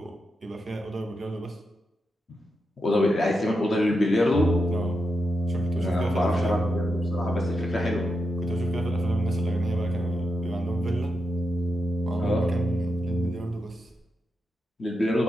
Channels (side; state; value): both; normal; correlation 0.86